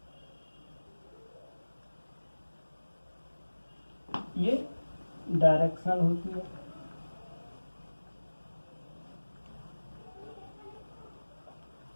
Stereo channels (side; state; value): both; inverted; correlation -1.00